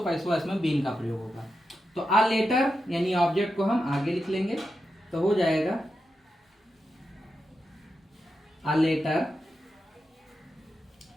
पैसिव वॉइस में बीन का प्रयोग होगा। तो अ लेटर यानी ऑब्जेक्ट को हम आगे लिख लेंगे, तो हो जाएगा अ लेटर,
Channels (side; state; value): both; normal; correlation 0.88